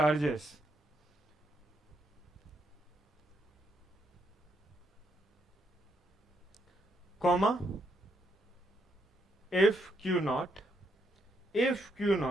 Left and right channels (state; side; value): normal; both; correlation 0.76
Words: Comma, if Q naught